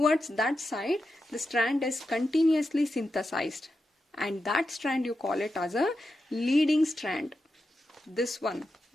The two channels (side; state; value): both; normal; correlation 0.89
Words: that side the strand is continuously synthesized, and that strand you call it as a leading strand. This one